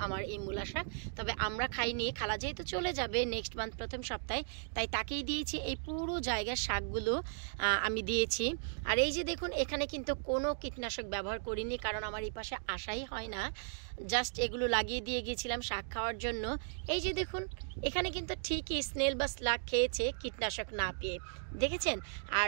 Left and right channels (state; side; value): silent; left; digital silence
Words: আমার এই মূলা শাক, তবে আমরা খাইনি। খালা যেহেতু চলে যাবে নেক্সট মান্থ প্রথম সপ্তাহে, তাই তাকেই দিয়েছি। এই পুরো জায়গার শাকগুলো আমি দিয়েছি। আর এই যে দেখুন, এখানে কিন্তু কোনো কীটনাশক ব্যবহার করিনি, কারণ আমার এই পাশে আসাই হয় না, জাস্ট এগুলো লাগিয়ে দিয়ে গিয়েছিলাম শাক খাওয়ার জন্য। এই যে দেখুন, এখানে কিন্তু ঠিকই স্নেল বা স্লাগ খেয়েছে কীটনাশক না পেয়ে, দেখেছেন? আর